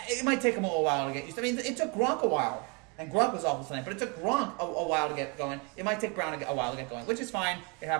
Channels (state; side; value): quieter; left; 31.9 dB